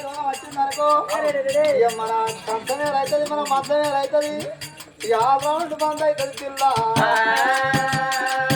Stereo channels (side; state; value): both; identical; correlation 1.00